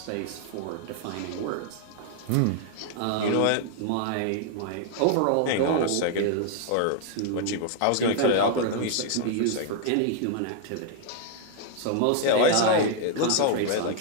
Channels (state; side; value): different; both; correlation -0.01